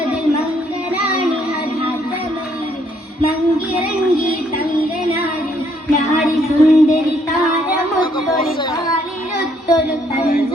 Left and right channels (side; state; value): both; normal; correlation 0.69